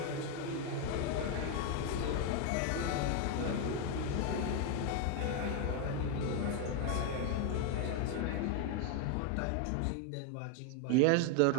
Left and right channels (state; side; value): different; both; correlation 0.01